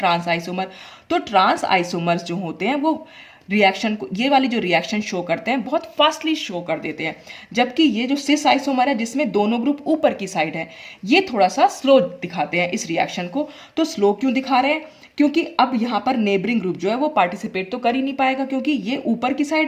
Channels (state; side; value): identical; both; correlation 1.00